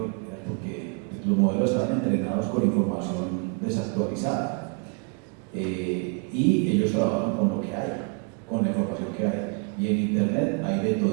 Era porque los modelos estaban entrenados con información desactualizada y ellos trabajan con lo que hay, con la información que hay, y en internet hay de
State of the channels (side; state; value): left; quieter; 34.8 dB